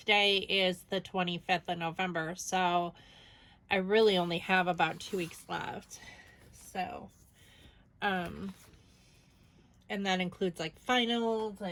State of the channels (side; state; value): both; identical; correlation 1.00